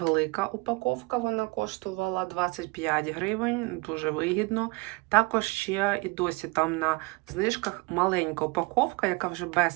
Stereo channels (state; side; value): quieter; left; 26.5 dB